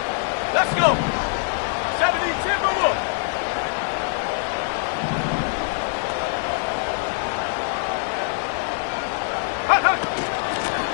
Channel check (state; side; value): silent; right; 59 dB below the other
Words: Let's go! 70 Timberwolves!